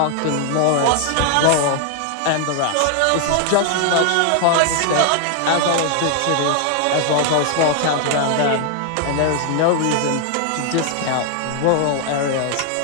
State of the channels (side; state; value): both; different; correlation 0.00